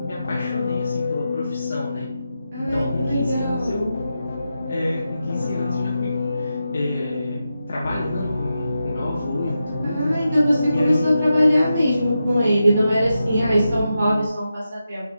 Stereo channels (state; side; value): inverted; both; correlation -0.89